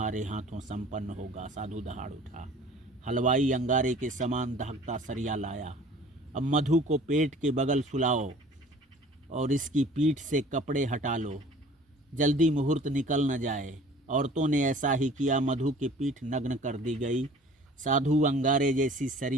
हाथों संपन्न होगा। साधु दहाड़ उठा। हलवाई अंगारे के समान दहकता सरिया लाया। अब मधु को पेट के बगल सुलाओ और इसकी पीठ से कपड़े हटा लो, जल्दी मुहूर्त निकल न जाए। औरतों ने ऐसा ही किया। मधु की पीठ नग्न कर दी गई। साधु अंगारे जैसी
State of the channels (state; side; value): normal; both; correlation 0.48